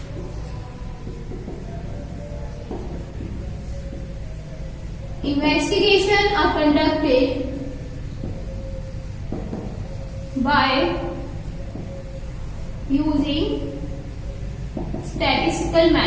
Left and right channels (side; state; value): both; identical; correlation 1.00